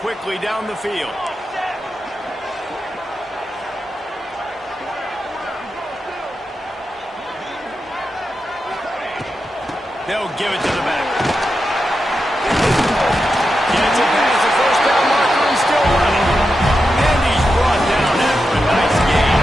quickly down the field. They'll give it to the back. Gets it past the first down marker and still running. And he's brought down after a nice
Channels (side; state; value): both; normal; correlation 0.89